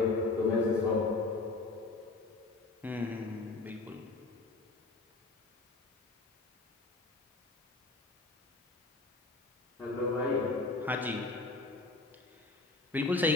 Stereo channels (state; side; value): quieter; right; 3.4 dB